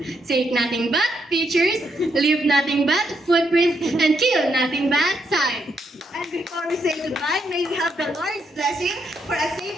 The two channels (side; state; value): both; normal; correlation 0.78